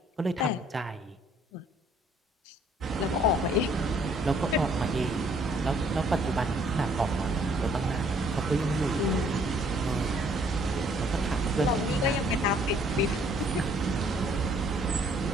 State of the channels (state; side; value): normal; both; correlation 0.62